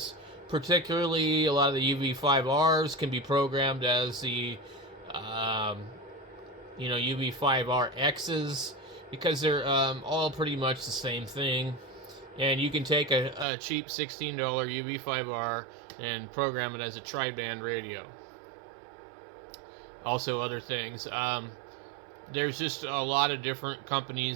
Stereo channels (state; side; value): drops out; left; at 13.5 s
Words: Particularly, a lot of the UV5Rs can be programmed as the UV5RXs, because they're all pretty much the same thing. And you can take a cheap $16 UV5R and program it as a tri-band radio. Also other things. There's just a lot of different